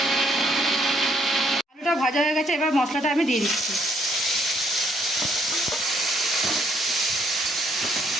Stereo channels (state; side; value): normal; both; correlation 0.69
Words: আলুটা ভাজা হয়ে গেছে, এবার মশলাটা আমি দিয়ে দিচ্ছি।